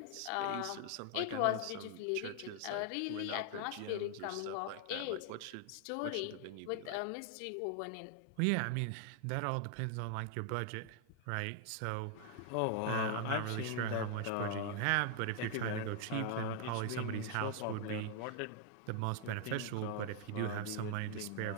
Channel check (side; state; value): both; different; correlation 0.00